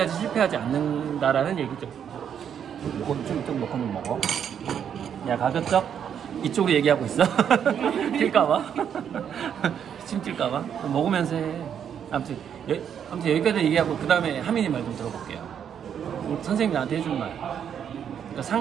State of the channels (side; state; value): left; quieter; 8.5 dB